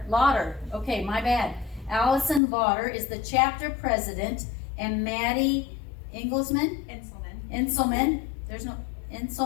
Lauter. Okay, my bad. Allison Lauter is the chapter president, and Maddie Inselmann. There's no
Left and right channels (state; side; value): drops out; right; at 2.4 s